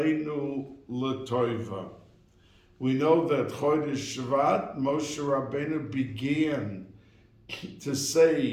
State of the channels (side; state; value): both; identical; correlation 1.00